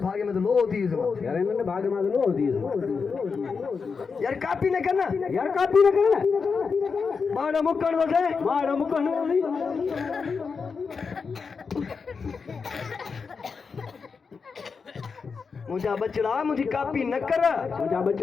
में तो लो थी इसमें यार हिननि भाग मां त लो थी यार कापी न करना यार कापी न करना माड़ा मुकण दो से माड़ा मुकण मुंहिंजा बचड़ा मुंहिंजी कापी न कर मुंहिंजा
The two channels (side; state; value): right; quieter; 5.3 dB